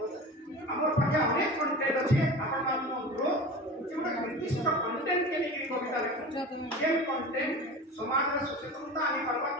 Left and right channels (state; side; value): normal; both; correlation 0.34